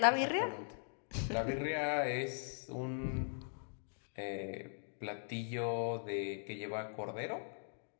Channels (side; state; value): right; silent; digital silence